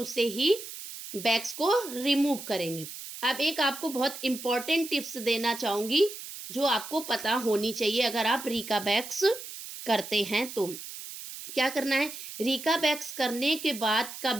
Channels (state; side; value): noise; right; hiss, 11 dB below the sound